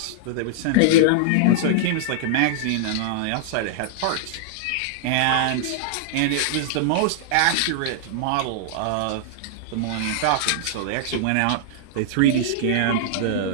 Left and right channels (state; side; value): different; both; correlation -0.01